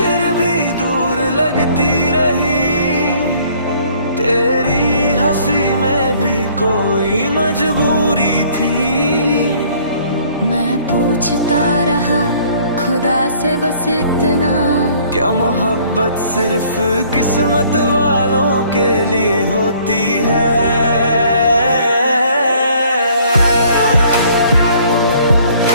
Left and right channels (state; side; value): inverted; both; correlation -0.58